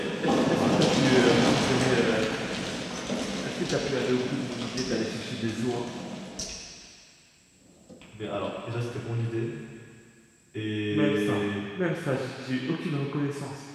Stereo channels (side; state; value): both; identical; correlation 1.00